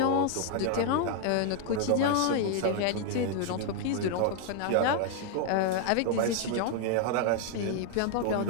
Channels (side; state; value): both; different; correlation 0.00